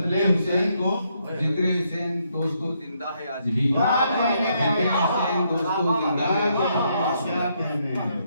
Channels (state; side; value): inverted; both; correlation -0.75